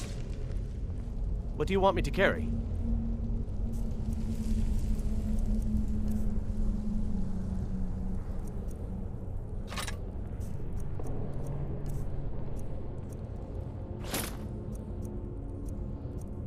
What do you want me to carry?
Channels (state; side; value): identical; both; correlation 1.00